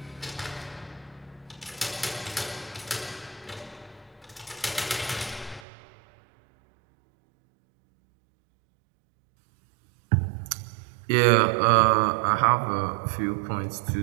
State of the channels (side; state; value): left; drops out; at 5.6 s